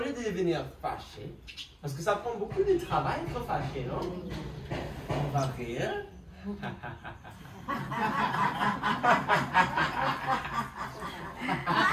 de devenir fâché, parce que ça prend beaucoup de travail être fâché, non? On va rire.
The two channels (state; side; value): identical; both; correlation 1.00